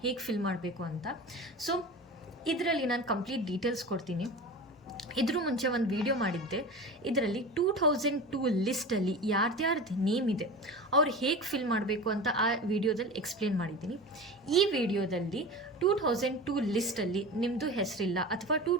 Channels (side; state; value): both; normal; correlation 0.32